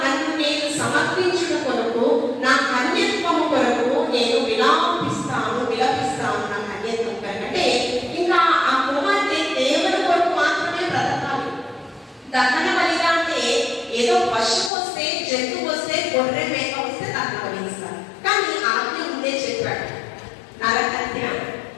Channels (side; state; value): right; drops out; at 14.7 s